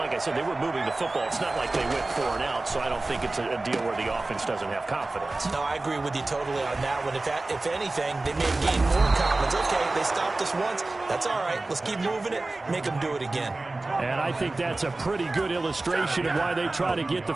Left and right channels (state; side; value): quieter; left; 3.1 dB